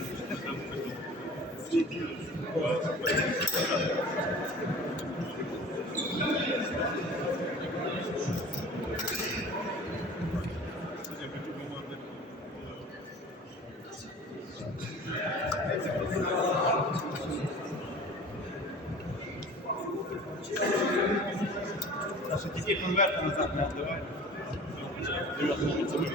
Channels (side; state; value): both; normal; correlation 0.42